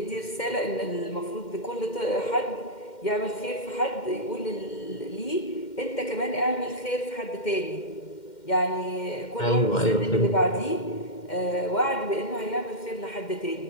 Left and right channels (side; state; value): right; late; 2.1 ms